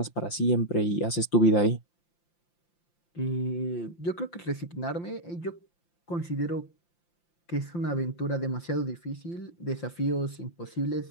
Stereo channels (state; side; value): late; right; 5.8 ms